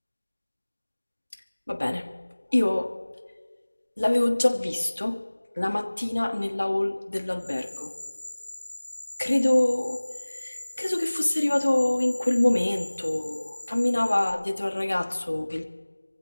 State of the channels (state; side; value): inverted; both; correlation -1.00